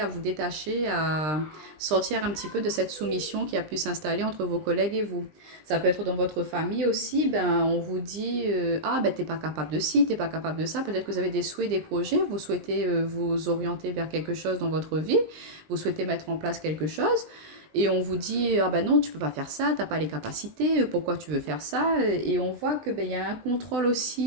vous détacher, à sortir un petit peu de cette soumission qui a pu s'installer entre vos collègues et vous. Ça peut être dans votre famille aussi, on vous dit, t'es pas capable de ci, t'es pas capable de ça. Peut-être que vous avez des souhaits, des projets, vous souhaitez vous orienter vers quelque chose dans votre vie, vous souhaitez mettre en place quelque chose, et on vous dit, non, tu peux pas faire ça, t'as pas les capacités, pourquoi tu veux faire ça? Et on voit que il y a un contrôle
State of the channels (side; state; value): left; late; 20 ms